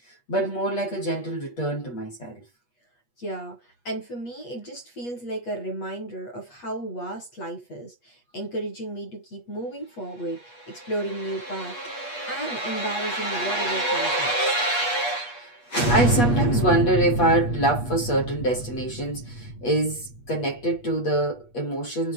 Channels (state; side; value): late; right; 8.3 ms